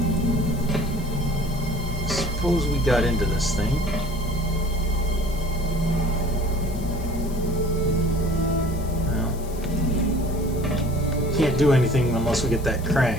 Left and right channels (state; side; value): noise; left; hiss, 18 dB below the sound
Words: Suppose we got into this thing. Well, can't do anything unless we get that